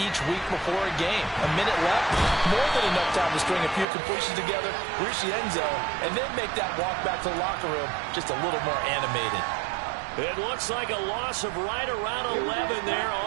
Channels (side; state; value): left; drops out; at 3.9 s